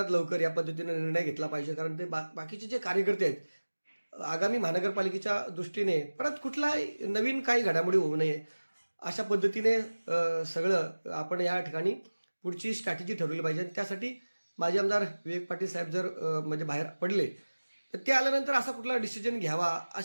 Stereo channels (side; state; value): both; inverted; correlation -1.00